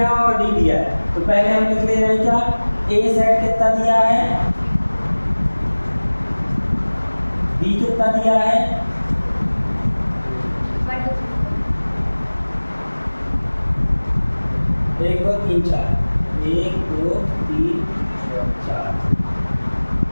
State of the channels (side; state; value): both; inverted; correlation -1.00